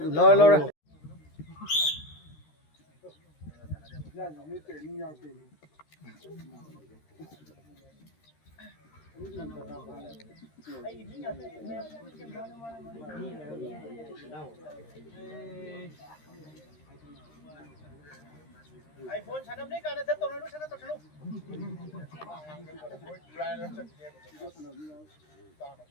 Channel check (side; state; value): right; late; 13 ms